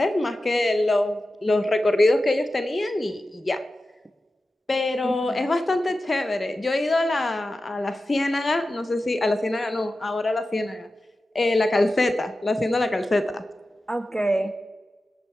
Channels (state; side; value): normal; both; correlation 0.93